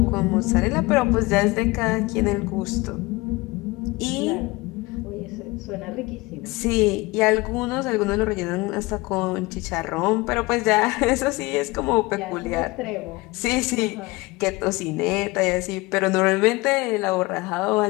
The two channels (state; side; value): quieter; right; 22.7 dB